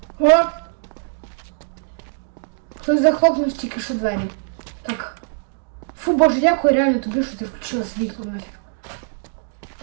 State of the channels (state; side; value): silent; left; 64 dB below the other